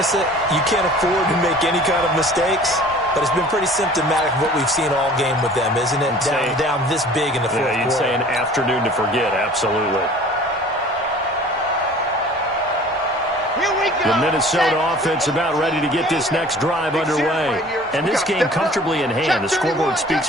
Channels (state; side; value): normal; both; correlation 0.47